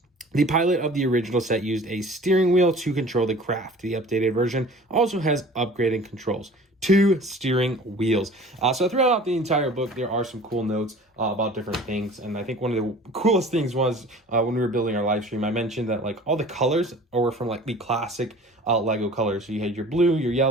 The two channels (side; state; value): both; normal; correlation 0.45